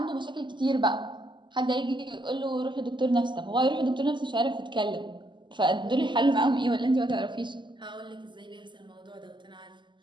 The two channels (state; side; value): late; left; 0.22 ms